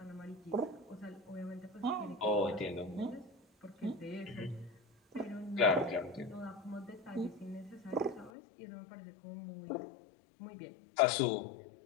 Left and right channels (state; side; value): drops out; right; at 8.3 s